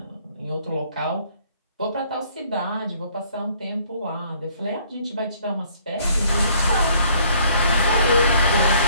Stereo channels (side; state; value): both; inverted; correlation -0.62